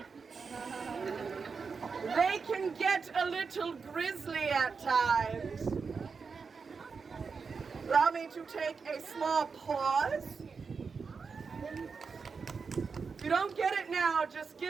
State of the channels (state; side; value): quieter; left; 5.2 dB